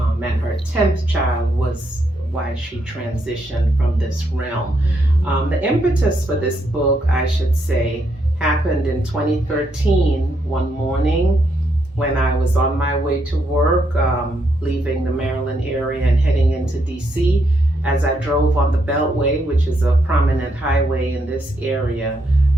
And her 10th child was why she transitioned from this realm. The impetus for this book, I should say, happened in 2013, one morning when I was on my way to work, leaving the Maryland area and heading into DC. As I drove on the Beltway, which is a prominent highway in this area,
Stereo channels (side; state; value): both; normal; correlation 0.77